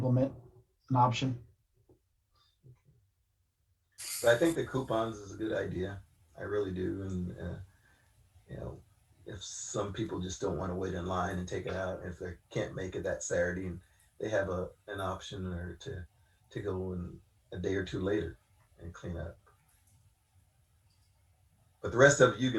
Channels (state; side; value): identical; both; correlation 1.00